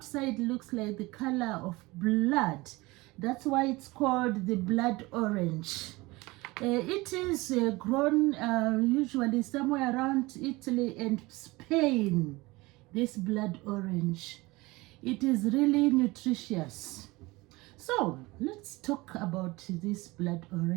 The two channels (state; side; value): quieter; left; 22.0 dB